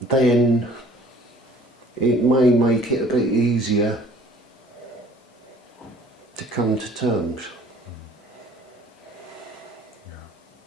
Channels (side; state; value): both; normal; correlation 0.52